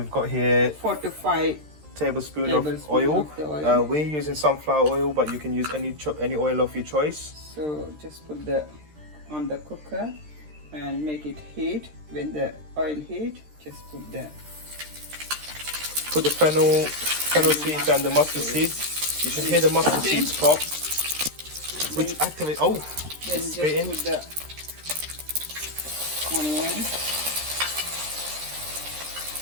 got here 4 to 5 tablespoon of oil. of the oil. We're using sunflower oil, but you can use any oil of your choice. So just put the on the cooker and make it heat. When the oil heat, just put the fennel seeds and the mustard seeds. You should hear the mustard seeds pop, which activate. Oh, then it's just spitting. put the onion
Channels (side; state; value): left; late; 13 ms